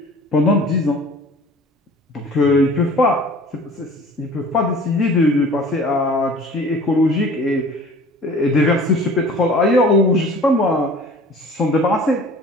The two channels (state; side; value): normal; both; correlation 0.46